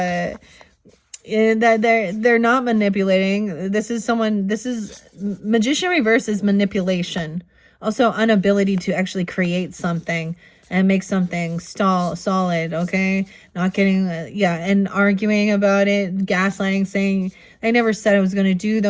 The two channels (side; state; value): both; identical; correlation 1.00